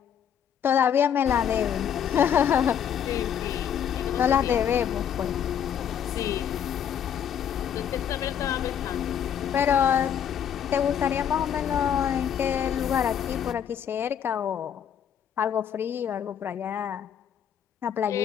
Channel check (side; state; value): right; quieter; 8.8 dB